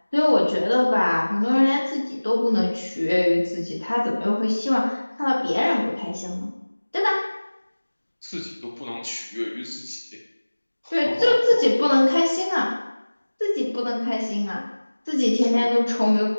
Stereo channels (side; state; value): both; inverted; correlation -1.00